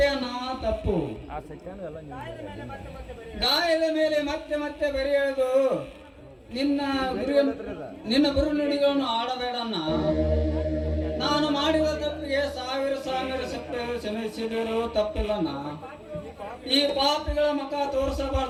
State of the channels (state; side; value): identical; both; correlation 1.00